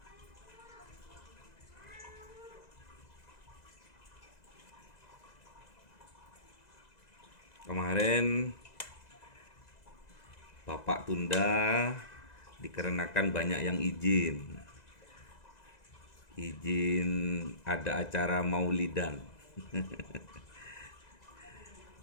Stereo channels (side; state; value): right; late; 2.0 ms